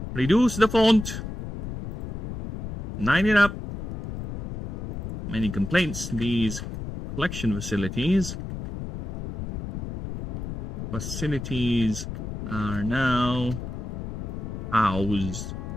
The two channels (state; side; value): noise; left; rumble, 7 dB below the sound